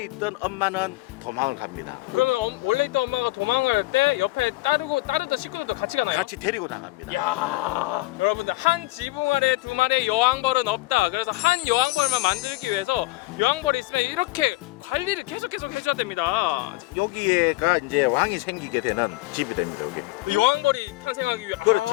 있던 엄마는 도망을 갑니다. 그러면 원래 있던 엄마가 도망갈 때 옆에 따르던 식구들도 같이 가나요? 같이 데리고 나갑니다. 야, 여러분들 한 지붕 안에 두 마리의 여왕벌은 없다. 그래서 한 여왕벌만 만들기 위해서 여왕벌이 있으면 이렇게 관리를 계속 해줘야 됩니다. 여기에가 이제 왕이 생기게 되는 집이 됩니다. 여기. 여왕벌이 탄생하기 위해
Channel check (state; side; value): quieter; right; 20.4 dB